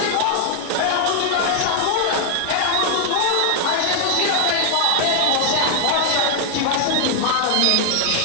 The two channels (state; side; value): different; both; correlation 0.00